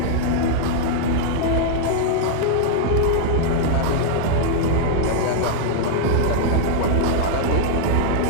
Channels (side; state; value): both; different; correlation -0.01